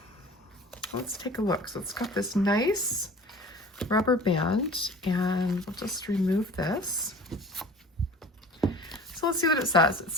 let's take a look. So it's got this nice rubber band, and we'll just remove this. So let's see what it says. It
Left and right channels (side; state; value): both; normal; correlation 0.42